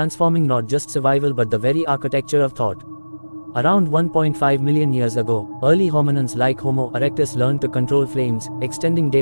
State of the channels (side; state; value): both; inverted; correlation -1.00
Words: not just survival but the very architecture of thought. Around 1.5 million years ago, early hominins like Homo erectus learned to control flames, extending